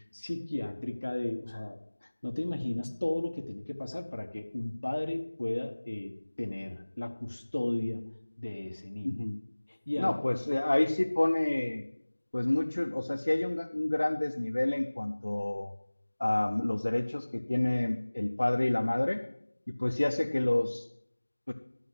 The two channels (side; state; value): both; inverted; correlation -1.00